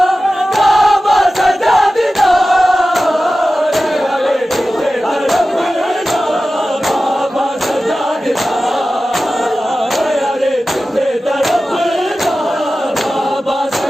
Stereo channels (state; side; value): normal; both; correlation 0.95